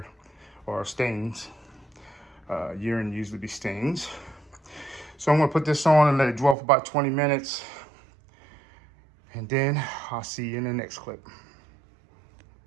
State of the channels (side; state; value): left; drops out; at 6.6 s